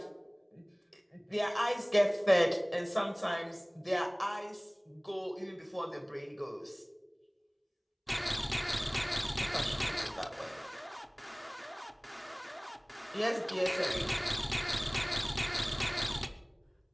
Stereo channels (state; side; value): identical; both; correlation 1.00